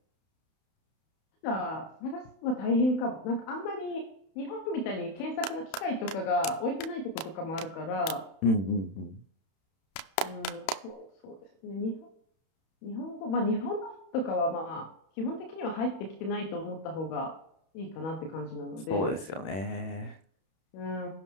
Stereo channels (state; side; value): late; right; 31 ms